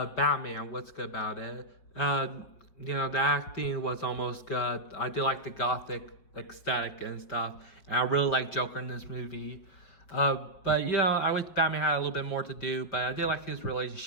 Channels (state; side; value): late; right; 5.4 ms